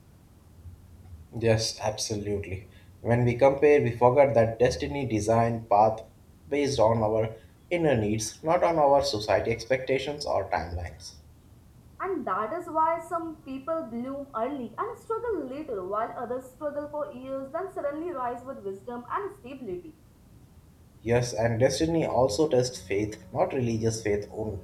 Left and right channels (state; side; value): identical; both; correlation 1.00